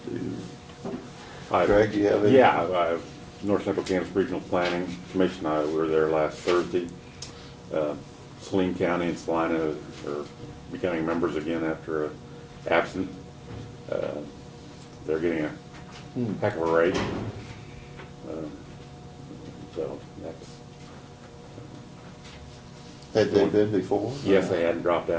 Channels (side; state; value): both; identical; correlation 1.00